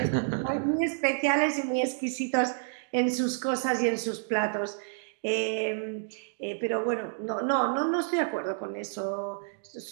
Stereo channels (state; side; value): silent; left; digital silence